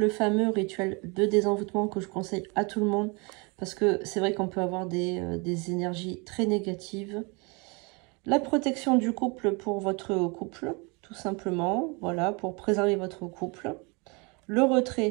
fameux rituel de désenvoûtement que je conseille à tout le monde parce que c'est vrai qu'on peut avoir des énergies très négatives. La protection du couple pour votre couple, tout simplement, voilà, pour préserver votre couple. Le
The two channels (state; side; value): quieter; left; 30.0 dB